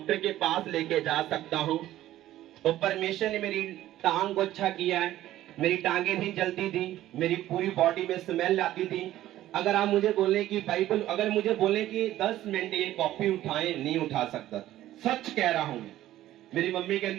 के पास लेके जा सकता हूं। तो परमेश्वर ने मेरी टांग को अच्छा किया है। मेरी टांगे नहीं जलती थी, मेरी पूरी बॉडी में स्मेल आती थी। अगर आप मुझे बोले कि बाइबल, अगर मुझे बोले कि 10 मिनट ये कॉपी उठाएं, नहीं उठा सकता। सच कह रहा हूं। मेरी मम्मी के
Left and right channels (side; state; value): left; quieter; 14.0 dB